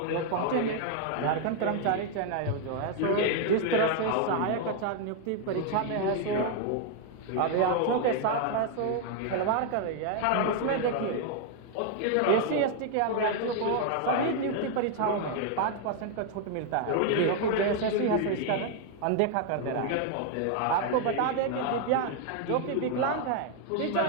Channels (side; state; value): both; different; correlation 0.00